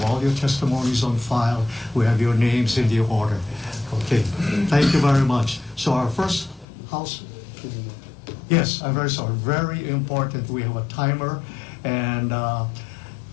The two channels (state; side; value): drops out; right; at 6.7 s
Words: all your testimonies on file. We have your names in the order. Okay, thank you very much. So our first House, yes, I'm very sorry, very important. We have a timer, and